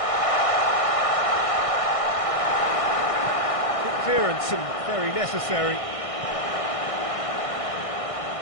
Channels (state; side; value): late; right; 1.6 ms